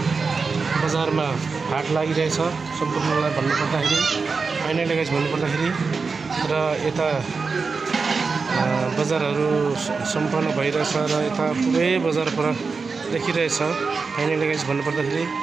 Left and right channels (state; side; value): quieter; left; 4.7 dB